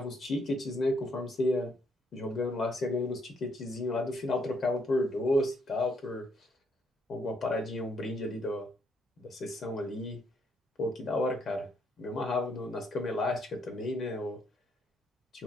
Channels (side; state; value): both; normal; correlation 0.72